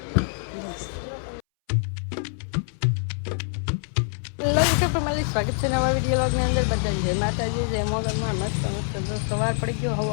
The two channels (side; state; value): right; silent; 62 dB below the other